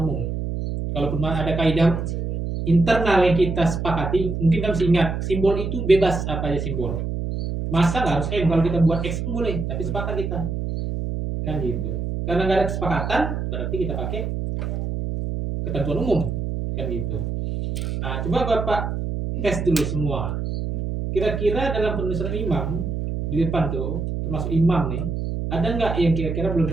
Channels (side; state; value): right; noise; hum, 3 dB below the sound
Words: Kalaupun ada kaidah internal yang kita sepakati, mungkin kita mesti ingat simbol itu bebas apa aja simbol. Masa nggak harus M, kalau kita buat X pun boleh, tapi sepakat kita kan gitu. Karena nggak ada kesepakatan, berarti kita pakai ketentuan umum kan gitu. Nah, coba Bapak tes dulu semua. Kira-kira dalam penulisan imam di depan tuh, termasuk imam nih, ada nggak yang kira-kira